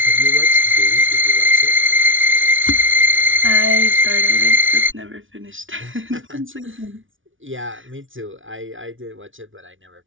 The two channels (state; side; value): late; left; 0.57 ms